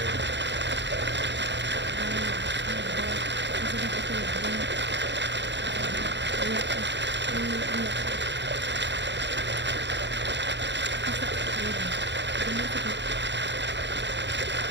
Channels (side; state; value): left; late; 0.52 ms